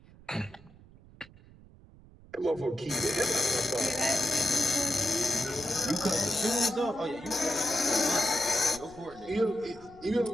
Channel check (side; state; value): right; noise; rumble, 23 dB below the sound